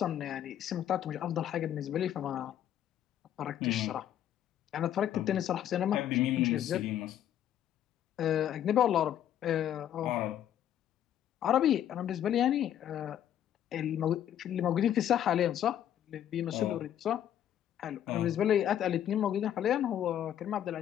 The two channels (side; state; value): right; quieter; 10.7 dB